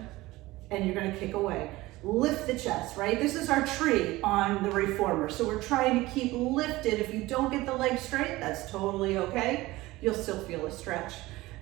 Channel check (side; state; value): left; quieter; 19.1 dB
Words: and you're going to kick away. Lift the chest, right? This is our tree on the reformer. So we're trying to keep lifted. If you don't get the leg straight, that's totally okay. You'll still feel a stretch.